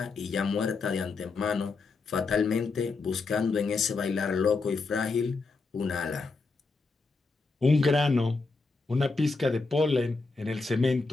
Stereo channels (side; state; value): right; quieter; 4.0 dB